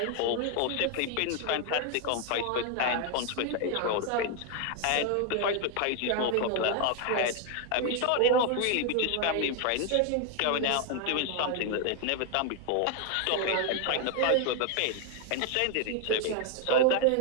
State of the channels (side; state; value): both; different; correlation 0.00